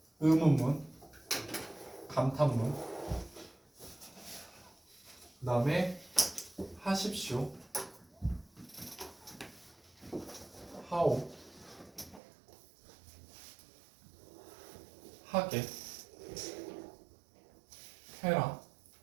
의문문, 감탄문, 그 다음에 하십시오, 하오, 하게, 해라,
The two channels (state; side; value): drops out; left; at 12.2 s